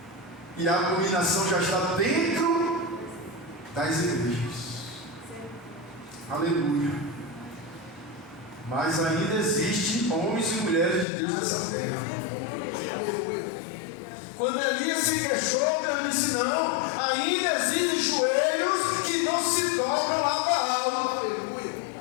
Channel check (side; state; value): right; drops out; at 11.1 s